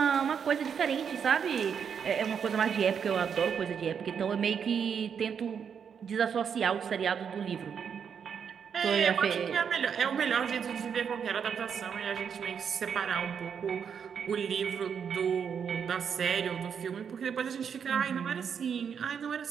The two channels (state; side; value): quieter; left; 7.2 dB